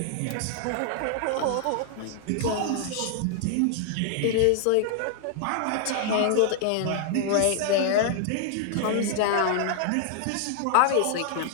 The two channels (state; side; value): different; both; correlation -0.01